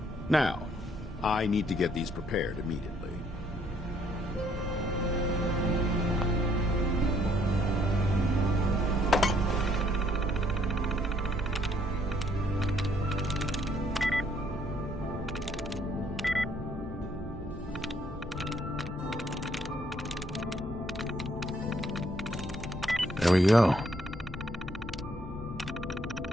Now, I need to get these prepared immediately. There we go.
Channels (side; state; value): both; normal; correlation 0.67